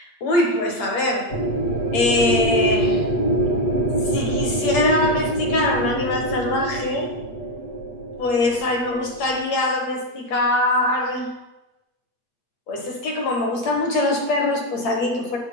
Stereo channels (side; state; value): right; late; 8.7 ms